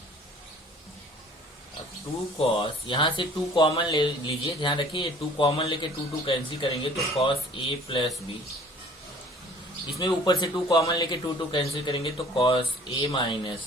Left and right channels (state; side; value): normal; both; correlation 0.51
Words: अब 2 cos, यहाँ से 2 कॉमन ले लीजिए, ध्यान रखिए 2 कॉमन लेके 2 कैंसिल करेंगे तो cos a प्लस बी, इसमें ऊपर से 2 कॉमन लेके 2 कैंसिल करेंगे तो cos a